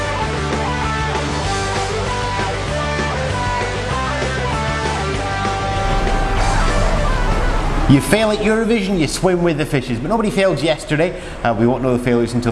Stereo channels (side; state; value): both; identical; correlation 1.00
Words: You fail at Eurovision, you swim with the fishes, but nobody failed yesterday. We won't know the failures until